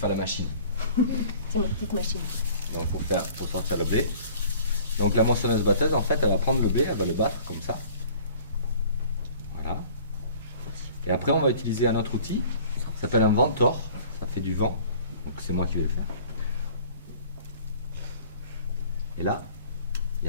la machine. C'est ma petite machine. Donc, pour sortir le blé. Donc, la moissonneuse-batteuse, en fait, elle va prendre le blé, elle va le battre comme ça. Voilà. Et après, on va utiliser un autre outil. Ça s'appelle un ventor. Ça fait du vent. Donc, c'est moi qui vais le faire. Et là, il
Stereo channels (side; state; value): both; inverted; correlation -0.49